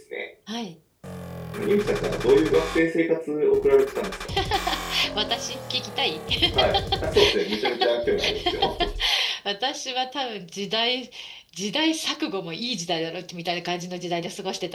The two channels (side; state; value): both; identical; correlation 1.00